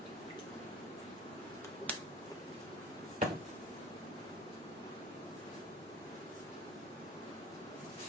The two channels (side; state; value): both; normal; correlation 0.44